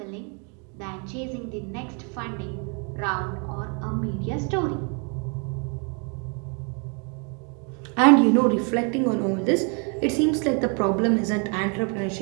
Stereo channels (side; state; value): left; quieter; 36.8 dB